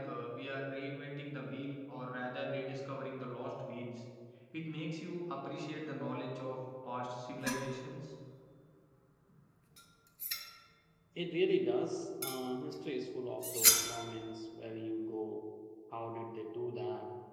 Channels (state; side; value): identical; both; correlation 1.00